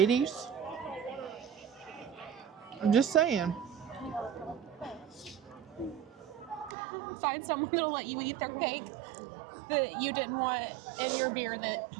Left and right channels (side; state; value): left; drops out; at 6.8 s